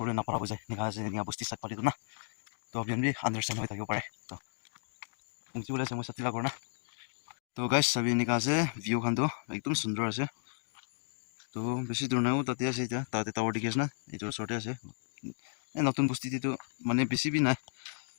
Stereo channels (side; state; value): right; silent; digital silence